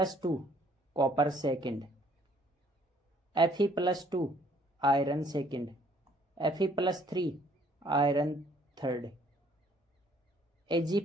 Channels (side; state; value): both; normal; correlation 0.62